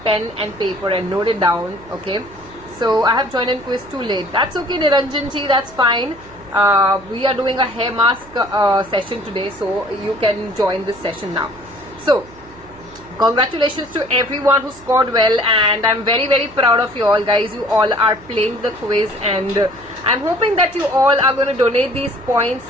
pen and paper and note it down, okay? So I have joined in quiz too late. That's okay, Niranjan ji, that's fine. We are doing a hair mask session today, so you can join this session now. So congratulations to everyone who scored well, and I'm very proud of you all, guys. You all are playing the quiz, and I'm hoping that you all are going to donate these points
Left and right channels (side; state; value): right; noise; hum, 23 dB below the sound